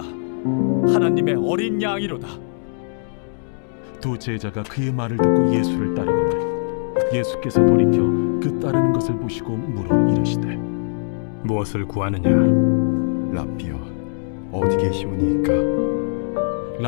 하나님의 어린 양이로다. 두 제자가 그의 말을 듣고 예수를 따르거늘 예수께서 돌이켜 그 따르는 것을 보시고 물어 이르시되 무엇을 구하느냐? 랍비여, 어디 계시오니이까?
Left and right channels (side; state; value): right; silent; digital silence